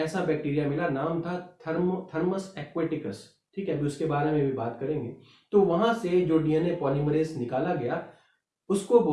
ऐसा बैक्टीरिया मिला, नाम था थर्मस एक्वेटिकस। ठीक है, अभी उसके बारे में भी बात करेंगे। तो वहां से जो डीएनए पॉलीमरेज निकाला गया उसको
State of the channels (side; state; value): both; identical; correlation 1.00